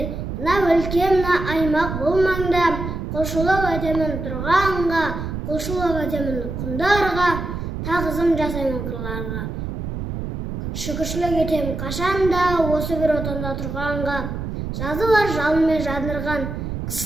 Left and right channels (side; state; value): right; noise; rumble, 5 dB below the sound